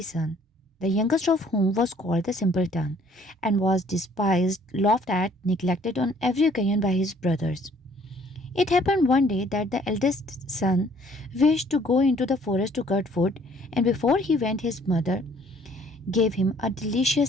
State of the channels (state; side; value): normal; both; correlation 0.59